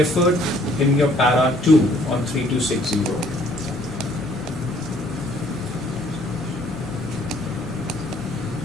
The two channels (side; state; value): both; normal; correlation 0.61